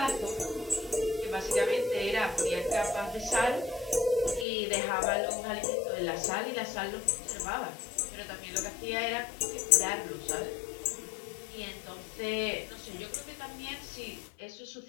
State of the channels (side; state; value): right; drops out; at 4.5 s